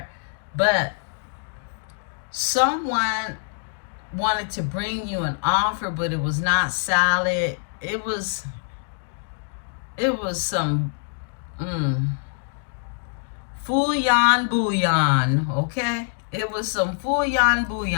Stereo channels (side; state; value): right; silent; digital silence